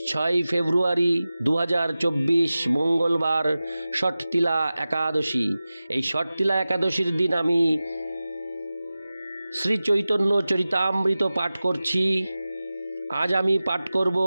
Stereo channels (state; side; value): inverted; both; correlation -0.96